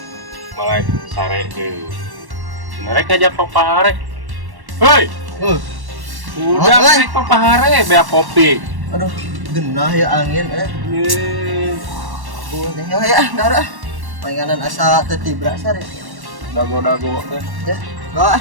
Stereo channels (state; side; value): late; left; 1.1 ms